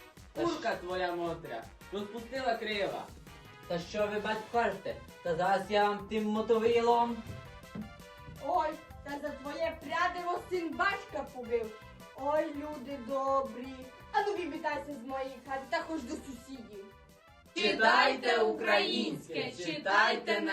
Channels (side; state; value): both; identical; correlation 1.00